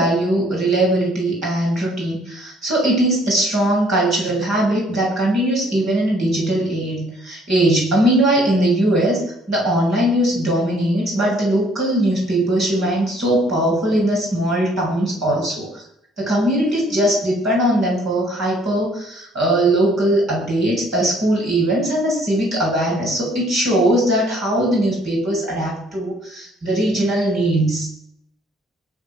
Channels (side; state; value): both; normal; correlation 0.61